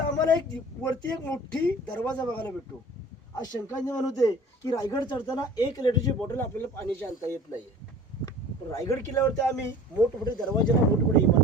वरती एक मोठी दरवाजा बघायला भेटतो. आज शंका निर्माण होते की रायगड चढताना 1 लिटरची बॉटल आपल्याला पाण्याची आणता येत नाही. पण रायगड किल्ल्यावरती आम्ही मोठमोठे दरवाजेला मोठमोठे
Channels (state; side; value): normal; both; correlation 0.44